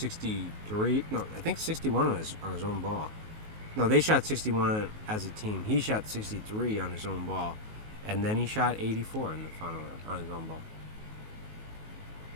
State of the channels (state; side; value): late; left; 19 ms